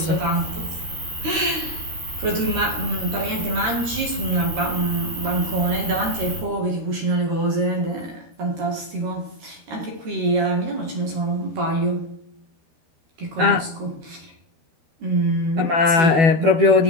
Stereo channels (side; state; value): left; late; 13 ms